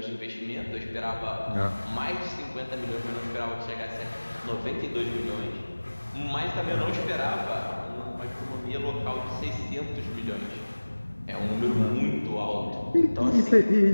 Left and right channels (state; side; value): inverted; both; correlation -1.00